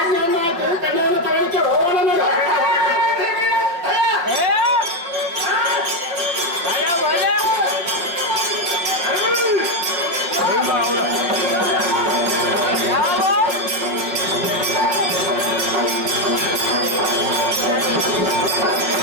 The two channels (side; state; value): left; late; 5.7 ms